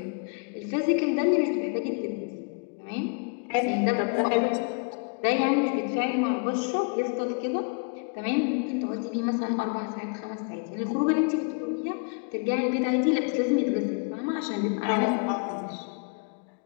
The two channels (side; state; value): right; quieter; 37.1 dB